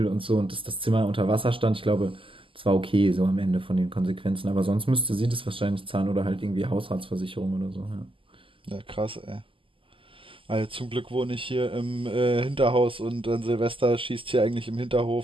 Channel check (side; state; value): left; late; 0.25 ms